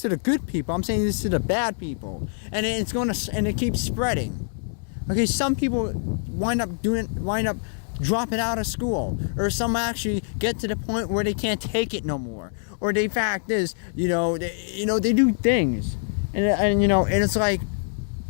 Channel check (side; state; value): right; silent; digital silence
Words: to the good people. I'm saying this to the bad people. And it keeps spreading. Okay, some people wind up dropping out of school, or some actually get to the point where they can't take it no more. Or the fact is, they do things. And it's